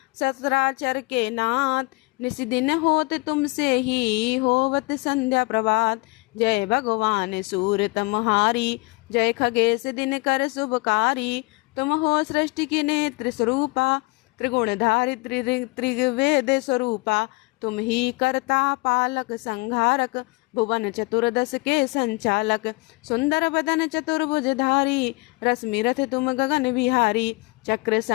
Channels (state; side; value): quieter; right; 26.4 dB